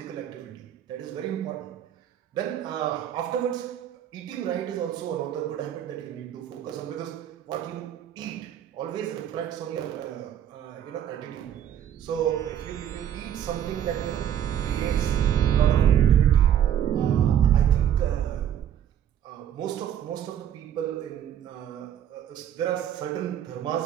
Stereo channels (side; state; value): left; quieter; 10.1 dB